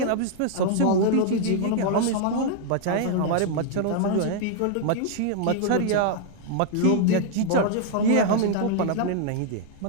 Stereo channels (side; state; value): both; different; correlation -0.01